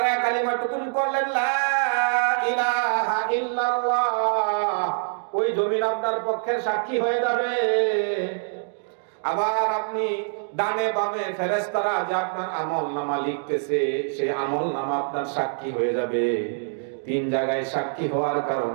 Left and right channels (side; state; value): left; silent; digital silence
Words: কালিমাটুকুন করলেন লা ইলাহা ইল্লাল্লাহ, ওই জমিন আপনার পক্ষে সাক্ষী হয়ে যাবে। আবার আপনি ডানে বামে ফেরেশতারা যে আপনার আমলনামা লিখতেছে, সেই আমলনামা আপনার সাক্ষী হয়ে যাবে। 3 জায়গায় সাক্ষী হওয়ার